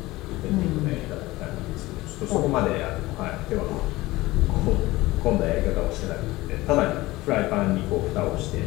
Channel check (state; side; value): quieter; right; 19.2 dB